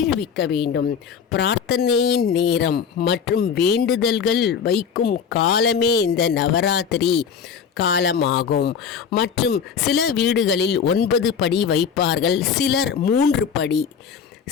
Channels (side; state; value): right; quieter; 7.0 dB